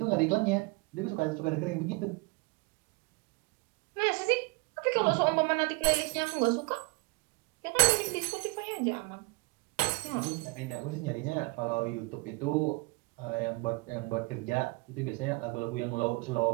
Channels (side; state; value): left; quieter; 26.8 dB